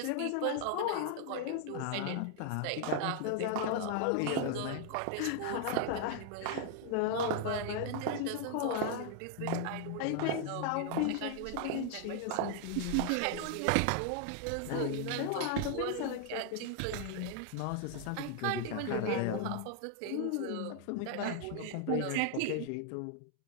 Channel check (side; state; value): both; different; correlation 0.00